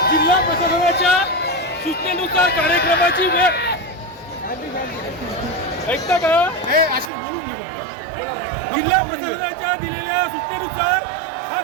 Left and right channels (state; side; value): drops out; left; at 7.1 s